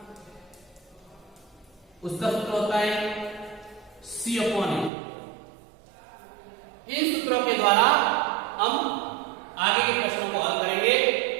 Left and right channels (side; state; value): left; drops out; at 4.9 s